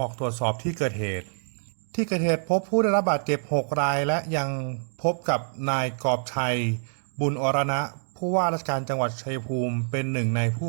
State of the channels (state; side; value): silent; left; digital silence